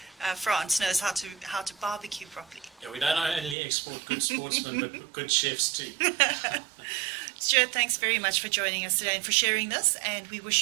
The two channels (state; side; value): drops out; left; at 3.6 s